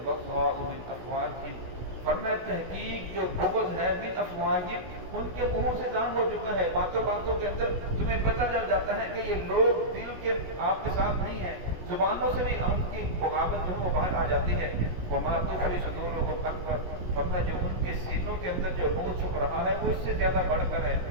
مِنْ أَفْوَاهِهِمْ، فرمایا تحقیق جو بغض ہے من افواہہم، ان کے منہوں سے ظاہر ہو چکا ہے، باتوں باتوں کے اندر تمہیں پتہ چل جاتا ہے کہ یہ لوگ دل کے آپ کے ساتھ نہیں ہیں، زبانوں سے بھی ان کی بغاوت جو ہے وہ باہر آ جاتی ہے۔ وما تخفی صدورهم اکبر، فرمایا جو ان کے سینوں کے اندر جو روح چھپ رہا ہے وہ اس سے زیادہ بڑھ کر ہے،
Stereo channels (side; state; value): left; late; 17 ms